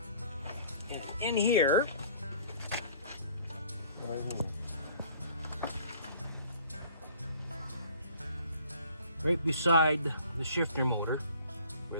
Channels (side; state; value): both; inverted; correlation -0.53